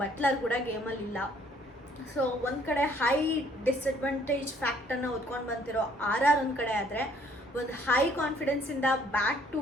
ಬಟ್ಲರ್ ಕೂಡ ಗೇಮಲ್ಲಿ ಇಲ್ಲ. ಸೊ ಒಂದು ಕಡೆ ಹೈ ಡಿಸ್ಅಡ್ವಾಂಟೇಜ್ ಫ್ಯಾಕ್ಟರ್ನ ಹೊತ್ಕೊಂಡು ಬಂದಿರೋ RR ಒಂದು ಕಡೆ ಆದರೆ, ಒಂದು ಹೈ ಕಾನ್ಫಿಡೆನ್ಸಿಂದ ಬ್ಯಾಕ್ ಟು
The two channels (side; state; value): both; normal; correlation 0.62